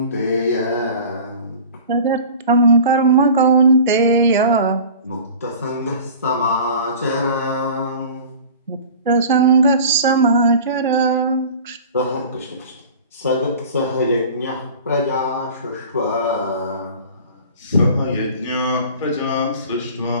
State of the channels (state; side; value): inverted; both; correlation -0.40